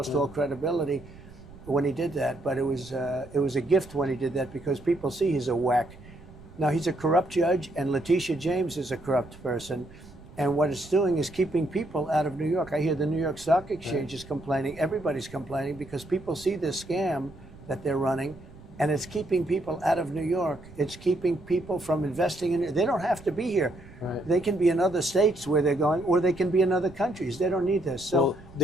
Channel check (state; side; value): noise; right; rumble, 20 dB below the sound